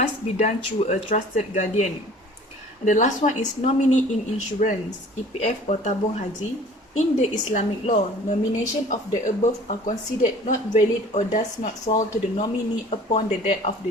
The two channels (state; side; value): normal; both; correlation 0.48